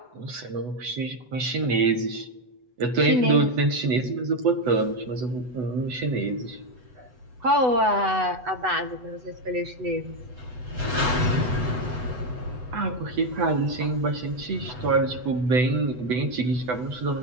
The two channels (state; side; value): late; left; 8.0 ms